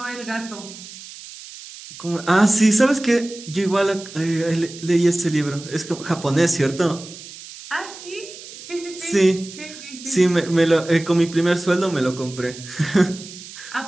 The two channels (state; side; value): noise; right; hiss, 15 dB below the sound